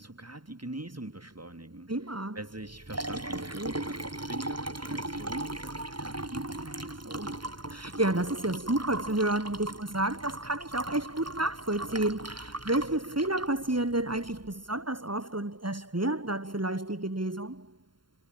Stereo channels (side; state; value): left; late; 0.72 ms